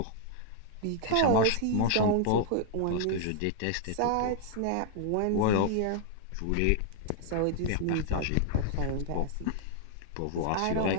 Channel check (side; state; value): both; different; correlation 0.00